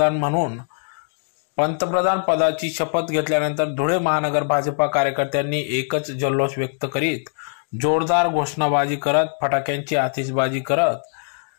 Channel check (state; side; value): silent; right; digital silence